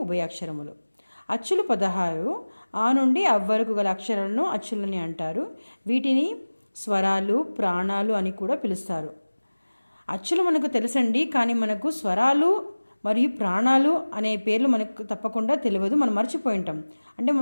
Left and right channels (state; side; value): inverted; both; correlation -1.00